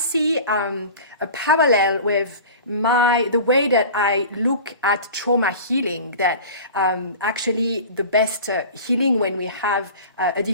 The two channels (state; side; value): inverted; both; correlation -0.37